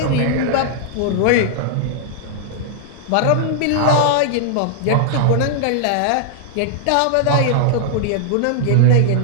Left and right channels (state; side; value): different; both; correlation -0.01